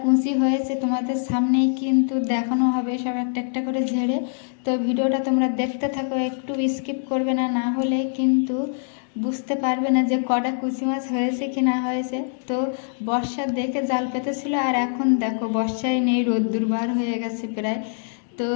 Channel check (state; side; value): silent; right; 63 dB below the other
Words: কুঁচি হয়েছে, তোমাদের সামনেই কিন্তু দেখানো হবে সব একটা একটা করে ঝেড়ে। তো ভিডিওটা তোমরা দেখতে থাকো, একটু স্কিপ করবে না, না হলে কিন্তু বুঝতে পারবে না যে কটা কুচি মাছ হয়েছে কি না হয়েছে। তো বর্ষা দেখে জাল পেতেছিল, আর এখন দেখো বর্ষায় নেই, রোদ্দুর বার হয়ে গেছে প্রায়। তো